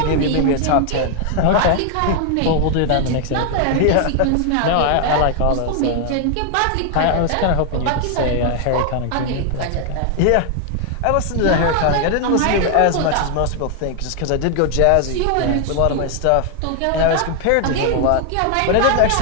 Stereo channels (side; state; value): both; different; correlation 0.00